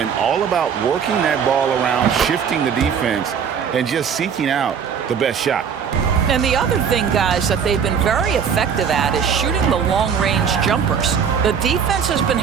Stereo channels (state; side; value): quieter; left; 7.2 dB